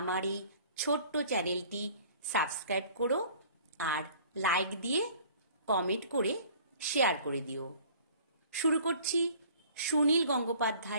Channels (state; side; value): inverted; both; correlation -0.51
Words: এই ছোট্ট চ্যানেলটি সাবস্ক্রাইব করো আর লাইক দিয়ে কমেন্ট করে শেয়ার করে দিও। শুরু করছি সুনীল